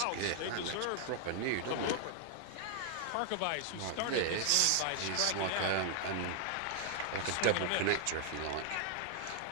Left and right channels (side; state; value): both; different; correlation 0.00